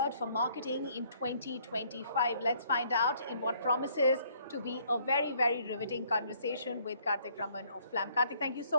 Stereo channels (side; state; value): both; inverted; correlation -0.64